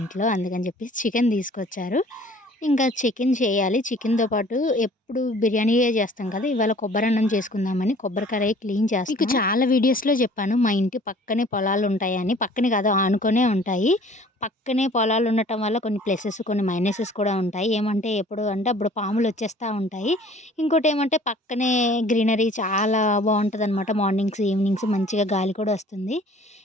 అందుకని చెప్పేసి చికెన్ తీసుకొచ్చారు. ఇంకా చికెన్ చేయాలి. చికెన్‌తో పాటు ఎప్పుడు బిర్యానీయే చేస్తాం కదా! ఇవాళ కొబ్బరన్నం చేసుకుందామని కొబ్బరి కడాయి క్లీన్ చేస్తున్నా. మీకు చాలా వీడియోస్‌లో చెప్పాను మా ఇంటి పక్కనే పొలాలుంటాయని. పక్కనే కాదు ఆనుకునే ఉంటాయి. పక్కనే పొలాలు ఉండటం వల్ల కొన్ని ప్లసెస్, కొన్ని మైనసెస్ కూడా ఉంటాయి. ఏమంటే ఎప్పుడు అంటే అప్పుడు పాములొచ్చేస్తా ఉంటాయి. ఇంకోటేమంటే పక్కనే గ్రీనరీ చాలా బావుంటదనమాట. మార్నింగ్స్, ఈవినింగ్స్ మంచిగా గాలి కూడా వస్తుంది.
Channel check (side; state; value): both; normal; correlation 0.51